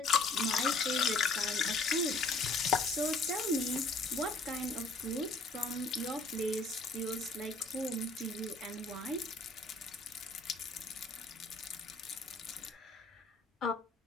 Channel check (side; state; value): right; quieter; 3.3 dB